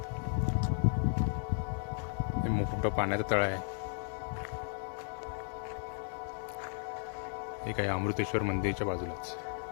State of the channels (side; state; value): right; silent; digital silence